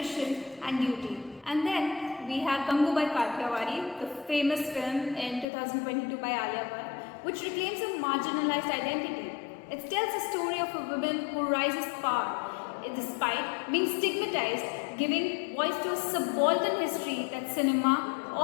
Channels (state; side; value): drops out; right; at 5.5 s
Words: and duty. And then we have Gangubai Kathiawadi, the famous film in 2022 by Alia Bhatt, which reclaims a marginalized identity. It tells a story of a woman who rises to power despite being stigmatized, giving voice to a subaltern history that cinema